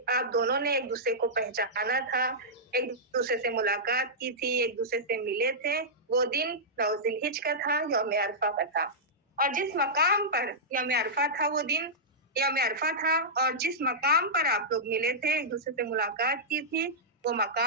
दोनों ने एक दूसरे को पहचाना था, एक दूसरे से मुलाकात की थी, एक दूसरे से मिले थे, वो दिन 9 ज़िलहिज का था, यौम अरफा का था। और जिस मकाम पर यौम अरफा था, वो दिन यौम अरफा था, और जिस मकाम पर आप लोग मिले थे, एक दूसरे से मुलाकात की थी, वो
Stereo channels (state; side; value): normal; both; correlation -0.12